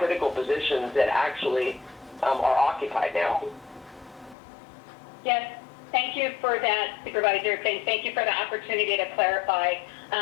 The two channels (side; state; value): right; drops out; at 4.4 s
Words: positions that actually are occupied now. Yes, thank you for that, Supervisor. Thank you for the opportunity to clarify.